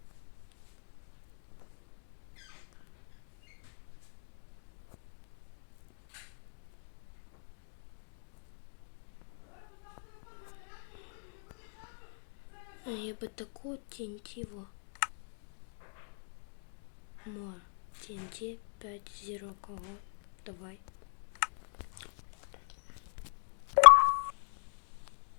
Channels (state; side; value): silent; right; digital silence